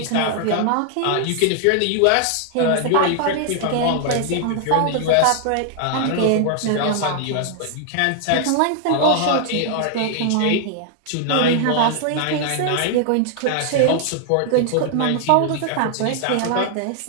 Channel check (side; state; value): both; different; correlation 0.00